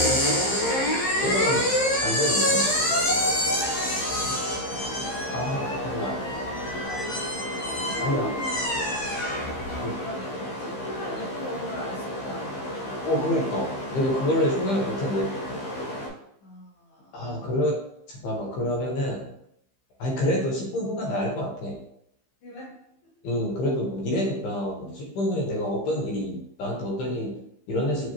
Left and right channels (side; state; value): right; late; 15 ms